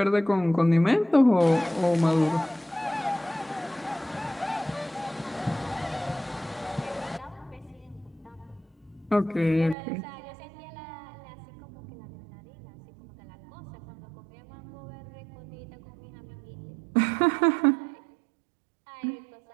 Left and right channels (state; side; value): drops out; left; at 9.8 s